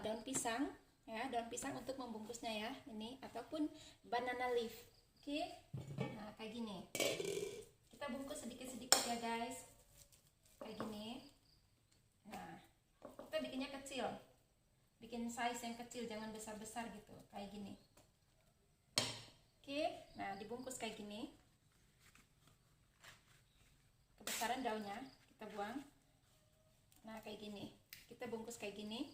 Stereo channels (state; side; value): identical; both; correlation 1.00